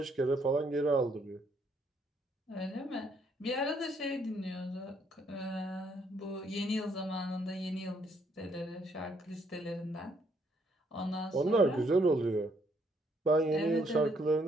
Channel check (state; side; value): normal; both; correlation 0.70